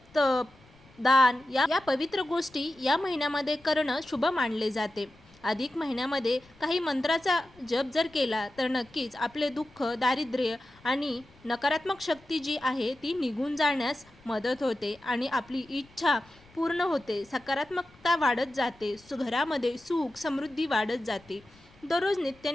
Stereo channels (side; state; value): left; noise; rumble, 27 dB below the sound